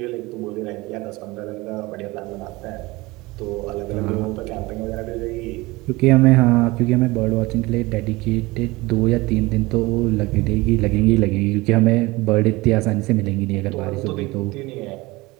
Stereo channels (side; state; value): left; quieter; 21.7 dB